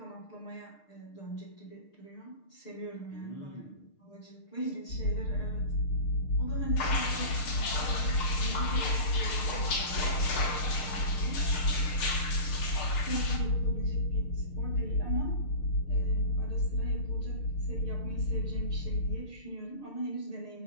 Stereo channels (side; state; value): right; late; 6.7 ms